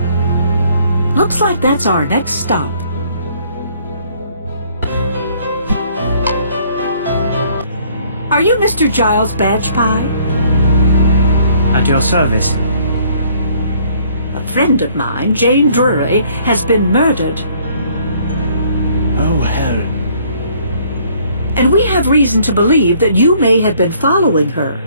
Looks like that's our next stop. Are you Mr. Giles Badgepie? At your service. A friend of mine, Jane Drury, has been murdered. Oh, hell. And we have reason to believe that you may have been following her.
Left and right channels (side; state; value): both; inverted; correlation -0.61